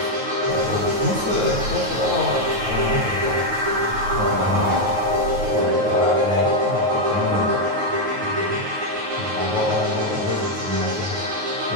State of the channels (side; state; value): left; late; 9.3 ms